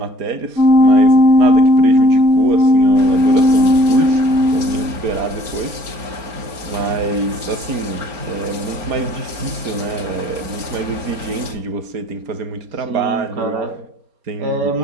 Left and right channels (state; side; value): late; left; 4.3 ms